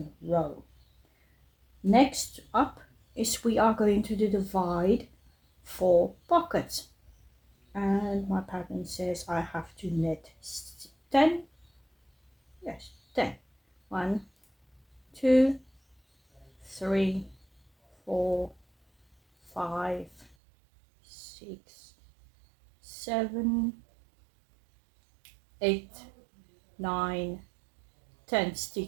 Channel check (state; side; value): drops out; left; at 20.4 s